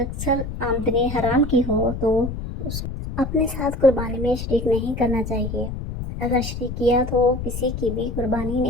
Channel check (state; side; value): noise; left; rumble, 6 dB below the sound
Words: آمدنی حرام کی ہو تو اس کو اپنے ساتھ قربانی میں شریک نہیں کرنا چاہیے، اگر شریک کیا تو کسی کی بھی قربانی